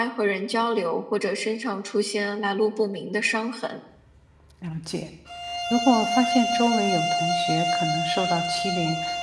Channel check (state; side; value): identical; both; correlation 1.00